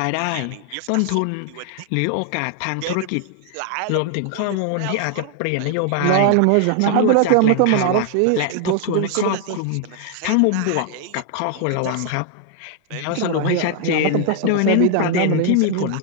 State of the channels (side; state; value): both; different; correlation 0.00